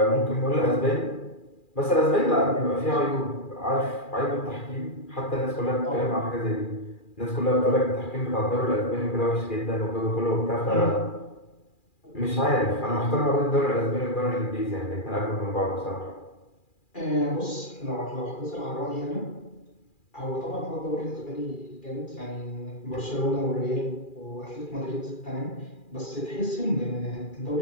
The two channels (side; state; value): right; late; 2.4 ms